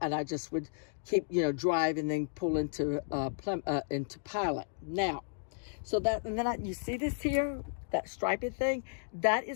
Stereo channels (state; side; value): silent; right; digital silence